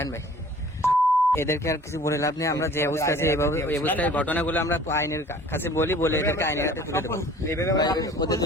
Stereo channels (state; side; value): normal; both; correlation 0.49